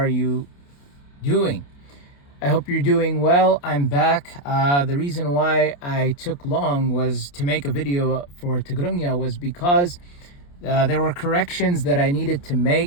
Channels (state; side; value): late; right; 28 ms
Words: you doing? I hope you're doing well. I'm back. The reason why I took long was to make a video for Tigrigna was because there were corrections that I needed to